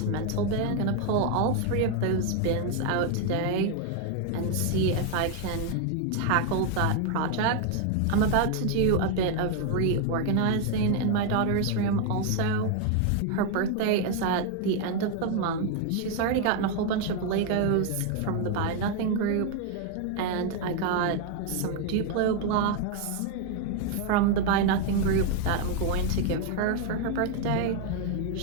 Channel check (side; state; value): both; different; correlation 0.00